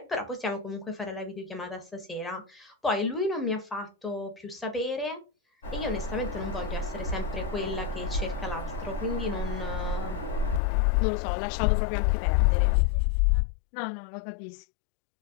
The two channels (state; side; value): drops out; right; at 10.6 s